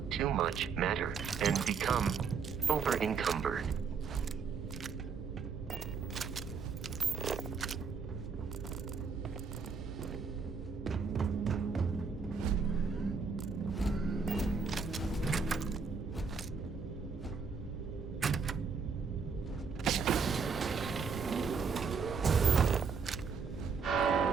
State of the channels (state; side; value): quieter; left; 5.5 dB